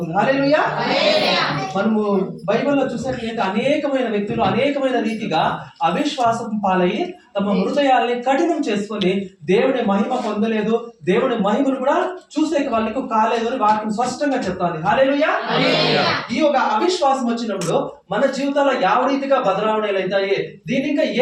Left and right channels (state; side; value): identical; both; correlation 1.00